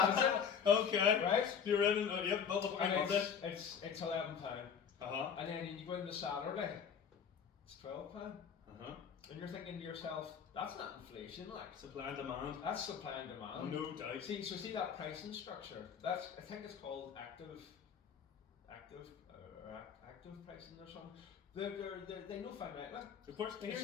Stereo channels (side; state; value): right; quieter; 7.3 dB